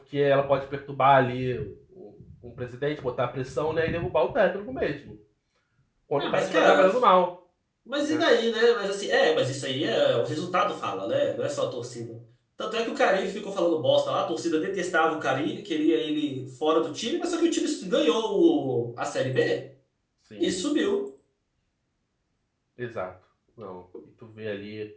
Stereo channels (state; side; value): identical; both; correlation 1.00